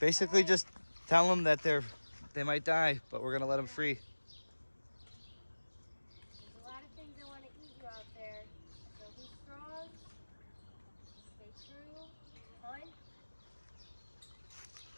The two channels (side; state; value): both; inverted; correlation -1.00